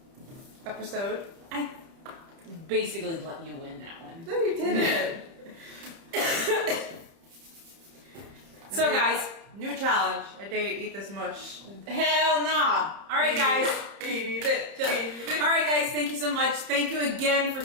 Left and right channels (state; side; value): late; left; 30 ms